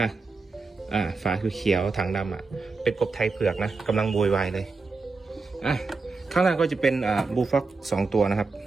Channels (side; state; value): left; quieter; 4.0 dB